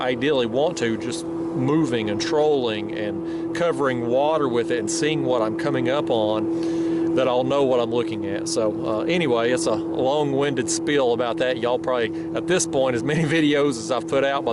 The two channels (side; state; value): both; identical; correlation 1.00